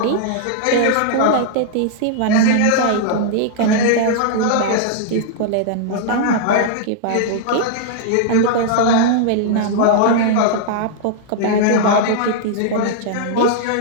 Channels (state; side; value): different; both; correlation -0.01